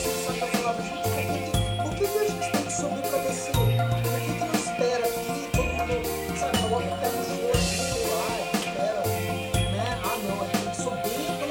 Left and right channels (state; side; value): identical; both; correlation 1.00